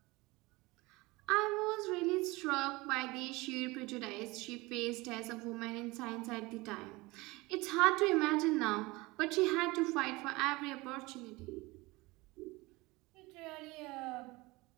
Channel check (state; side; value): quieter; left; 22.5 dB